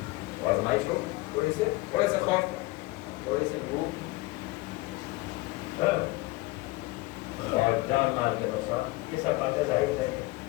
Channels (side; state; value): right; quieter; 21.6 dB